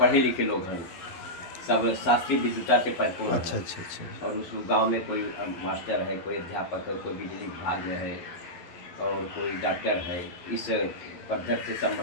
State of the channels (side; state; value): right; late; 12 ms